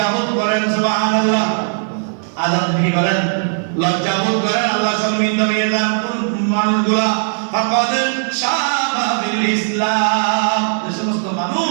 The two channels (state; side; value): silent; left; 55 dB below the other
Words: করেন। সুবহানাল্লাহ। আযাব কি করেন? লজ্জাবোধ করেন। আল্লাহ শর্মিন্দা হয়ে যান মানুষগুলা। ফাকাদ শাবা বিল ইসলাম, এই সমস্ত